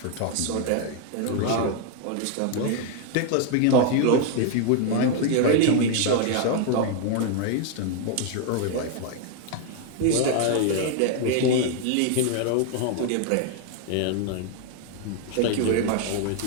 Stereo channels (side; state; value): both; different; correlation 0.00